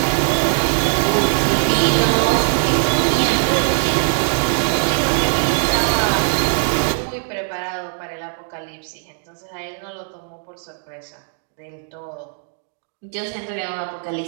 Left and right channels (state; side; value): silent; left; 66 dB below the other